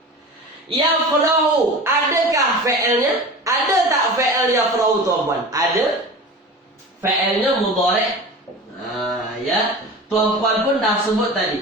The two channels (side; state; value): both; normal; correlation 0.34